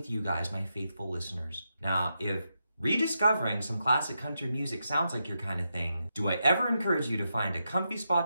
you guys, my faithful listeners. Now, if rediscovering some classic country music sounds like your kind of thing, do I ever encourage you to find a comfy spot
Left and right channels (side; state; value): both; inverted; correlation -0.85